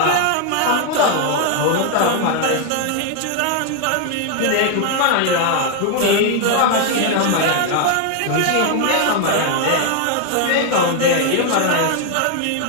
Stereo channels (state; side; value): different; both; correlation 0.00